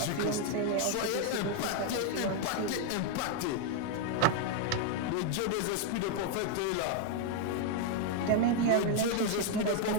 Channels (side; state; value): both; different; correlation 0.01